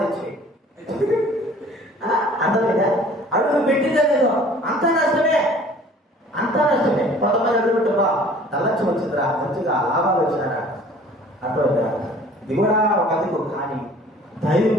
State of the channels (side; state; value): both; normal; correlation 0.50